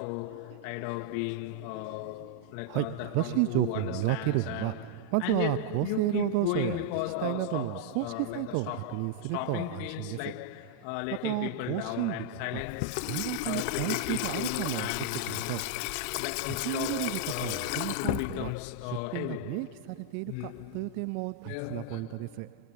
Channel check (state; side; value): different; both; correlation -0.01